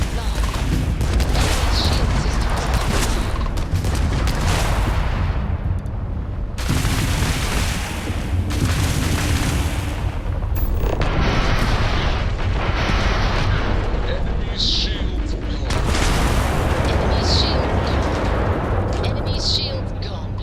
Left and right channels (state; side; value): identical; both; correlation 1.00